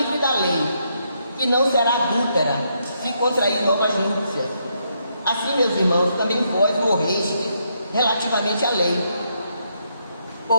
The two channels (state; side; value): inverted; both; correlation -0.77